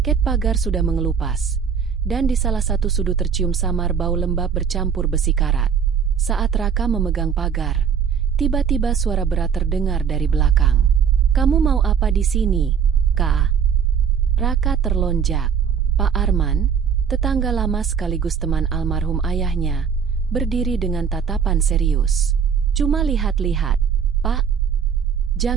Ket pagar sudah mengelupas, dan di salah satu sudut tercium samar bau lembab bercampur besi karat. Saat Raka memegang pagar, tiba-tiba suara berat terdengar dari belakang. "Kamu mau apa di sini, Kak?" Raka terlonjak. Pak Arman, tetangga lama sekaligus teman almarhum ayahnya, berdiri dengan tatapan serius. "Cuma lihat-lihat, Pak.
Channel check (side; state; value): left; quieter; 7.1 dB